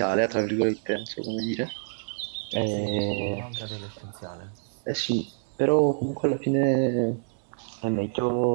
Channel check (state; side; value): silent; left; digital silence